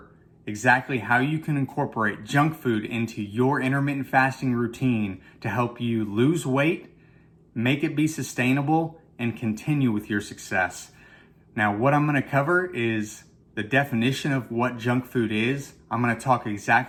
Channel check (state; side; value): identical; both; correlation 1.00